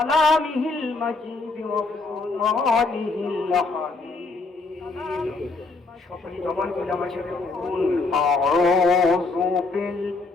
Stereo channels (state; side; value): quieter; right; 3.7 dB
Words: المجيد وفرقانه الحميد সকল জবান খুলে আমার সাথে বলুন আউযু